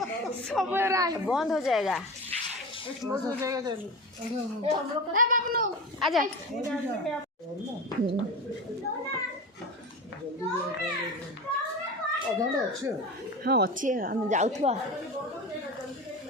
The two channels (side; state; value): both; normal; correlation 0.28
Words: बंद हो जाएगा। आजा हाँ अच्छी है हम जाऊथवा